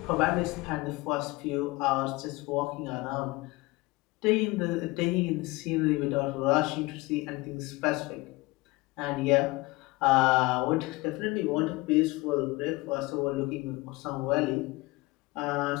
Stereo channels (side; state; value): right; quieter; 22.4 dB